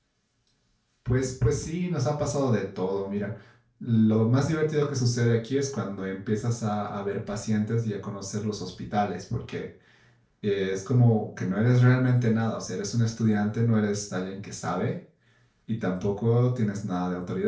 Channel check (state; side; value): identical; both; correlation 1.00